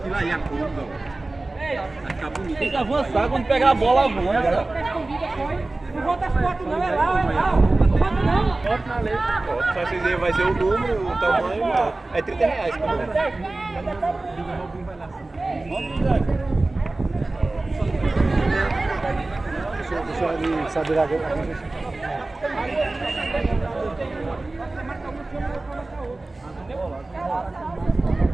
aí, a curva. Vai ficar bonito. Tem que avançar, quando pegar a bola, avança. Não volta as fotos não, é lá, Não volta não. Só vocês aí vai ser o número, o tamanho. É R$30 por número. Deixa eu ali saber agora.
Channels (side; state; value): left; quieter; 3.0 dB